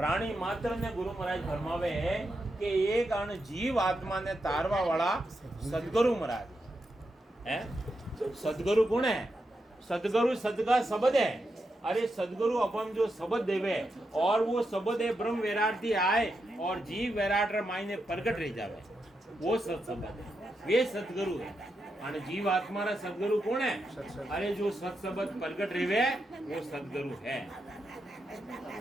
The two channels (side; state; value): both; normal; correlation 0.85